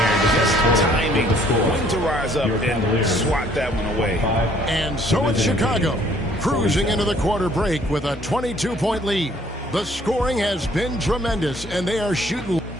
Just timing when to rise up and swat that one away. And so it's Chicago, cruising into the quarter break with a 22-point lead. The scoring has been tremendous, and they are shooting.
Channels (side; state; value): both; normal; correlation 0.61